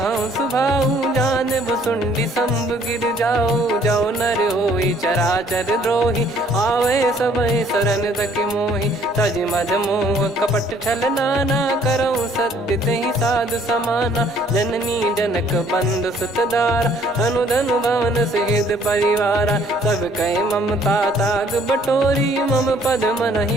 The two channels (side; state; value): both; normal; correlation 0.61